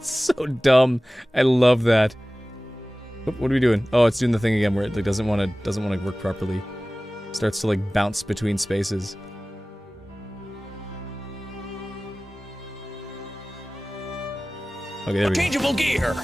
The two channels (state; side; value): normal; both; correlation 0.97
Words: so dumb. I love that. Oop, what are we doing? Oh, it's doing the thing again where it like, doesn't want to work properly. Starts to like bounce between spaces. Okay, there we go. Interchangeable gear.